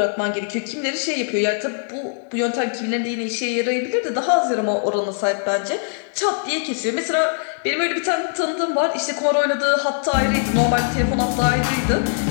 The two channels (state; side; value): silent; right; digital silence